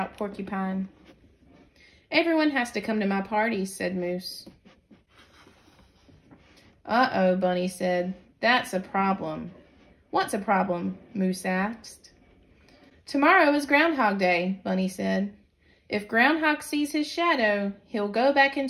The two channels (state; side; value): identical; both; correlation 1.00